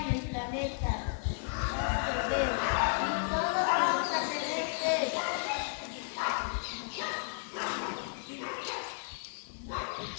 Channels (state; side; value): silent; right; 56 dB below the other